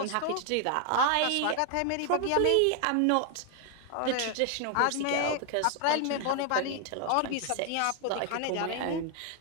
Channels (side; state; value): both; different; correlation 0.00